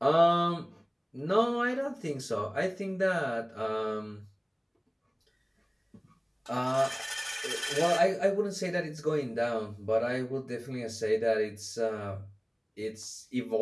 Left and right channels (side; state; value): both; identical; correlation 1.00